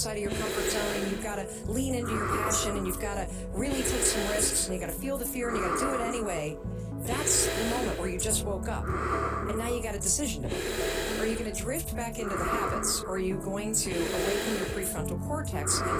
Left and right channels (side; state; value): both; identical; correlation 1.00